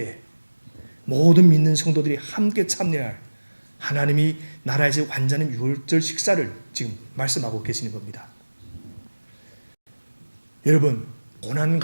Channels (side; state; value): both; inverted; correlation -1.00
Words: 모든 믿는 성도들이 함께 참여할 하나님이 나라에서 완전한 유월절 식사를 지금 말씀하고 계시는 겁니다. 여러분, 고난